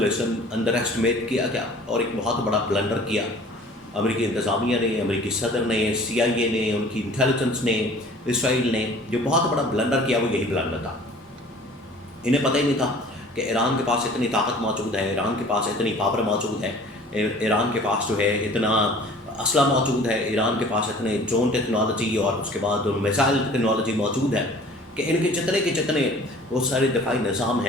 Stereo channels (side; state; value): both; normal; correlation 0.48